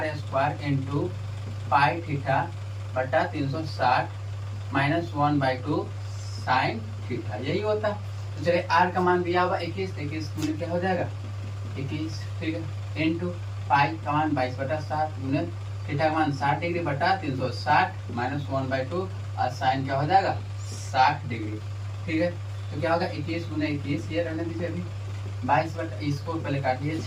square into pi theta बटा 360 माइनस 1/2 साइन थीटा, यही होता है। तो चलिए आर का मान दिया हुआ 21, 21 गुने क्या हो जाएगा, 21। ठीक है, इंटू पाई का मान 22 बटा 7 गुने थीटा का मान 60 डिग्री बटा 360 माइनस 1/2, और साइन क्या हो जाएगा, 60 डिग्री। ठीक है, तो क्या होगा, 21 गुने 21, ये रहने दीजिए अभी, 22 बटा, इसको पहले काटिए,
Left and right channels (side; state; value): both; identical; correlation 1.00